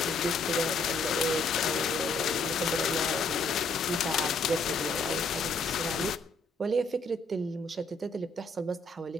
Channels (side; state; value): right; quieter; 3.3 dB